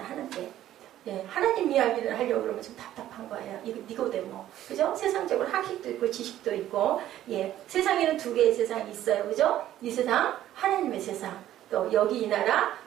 예, 하나님 이야기를 하려고 그러면 좀 답답한 거예요. 이거 니고데모, 그죠? 세상적으로 학식도 있고 지식도 있고, 예, 세상에는 두 개의 세상이 있어요, 그죠? 이 세상, 하나님의 세상, 또 여기 이 나라,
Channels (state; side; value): quieter; left; 12.7 dB